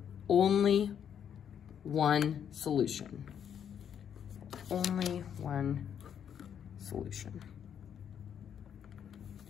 only one solution. Only one solution.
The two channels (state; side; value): quieter; right; 8.6 dB